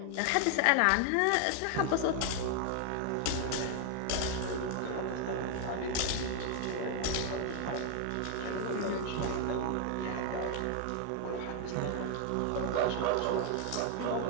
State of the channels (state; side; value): different; both; correlation 0.00